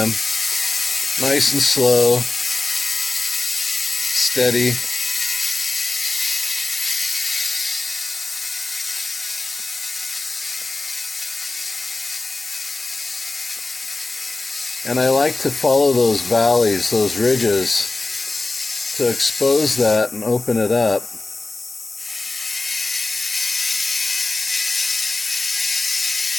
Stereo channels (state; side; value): quieter; right; 3.3 dB